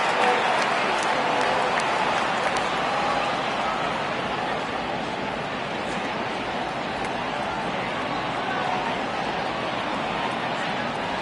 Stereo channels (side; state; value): both; identical; correlation 1.00